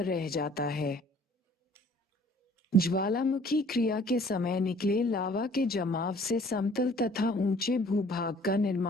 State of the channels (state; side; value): normal; both; correlation 0.54